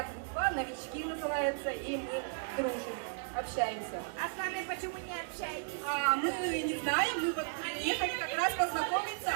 группа, новички называется, и мы дружим, общаемся. А с вами почему не общаетесь? А мы не знаем, мы вот приехали как раз познакомиться.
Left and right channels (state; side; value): silent; left; digital silence